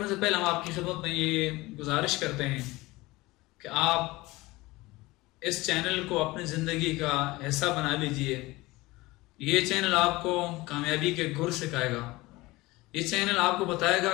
سے پہلے ہم آپ کی خدمت میں یہ گزارش کرتے ہیں کہ آپ اس چینل کو اپنی زندگی کا حصہ بنا لیجئے۔ یہ چینل آپ کو کامیابی کے گر سکھائے گا۔ یہ چینل آپ کو بتائے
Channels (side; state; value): right; quieter; 20.7 dB